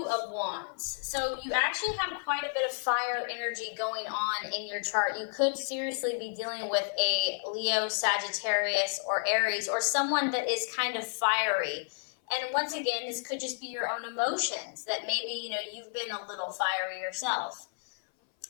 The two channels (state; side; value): silent; right; 57 dB below the other